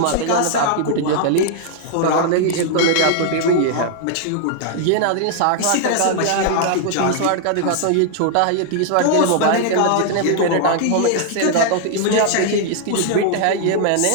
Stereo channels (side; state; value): both; different; correlation -0.01